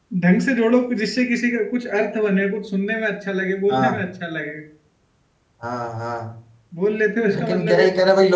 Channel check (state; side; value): identical; both; correlation 1.00